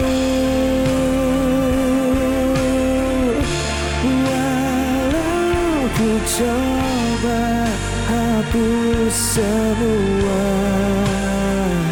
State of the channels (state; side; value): identical; both; correlation 1.00